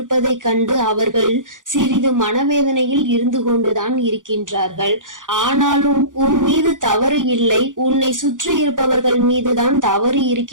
கண்டு அவர்கள் சிறிது மனவேதனையில் இருந்து கொண்டுதான் இருக்கின்றார்கள். ஆனாலும் உன் மீது தவறு இல்லை, உன்னை சுற்றி இருப்பவர்கள் மீதுதான் தவறு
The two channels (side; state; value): left; late; 0.88 ms